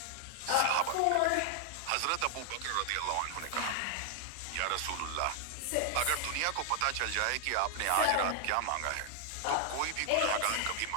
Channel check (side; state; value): both; different; correlation 0.00